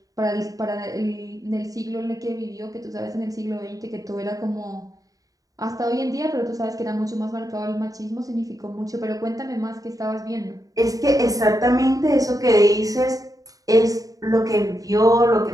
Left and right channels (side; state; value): left; late; 0.17 ms